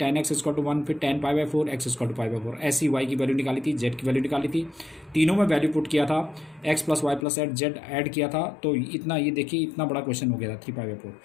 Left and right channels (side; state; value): right; drops out; at 7.2 s